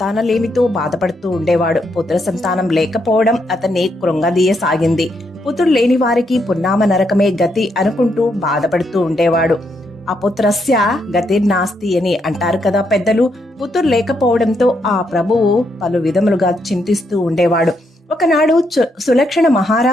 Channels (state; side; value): normal; both; correlation 0.78